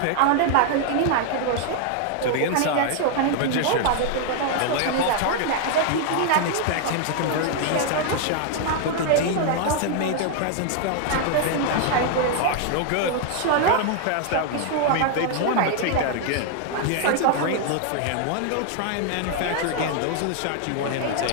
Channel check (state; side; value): different; both; correlation 0.00